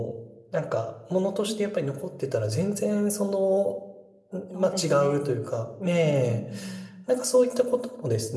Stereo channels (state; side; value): identical; both; correlation 1.00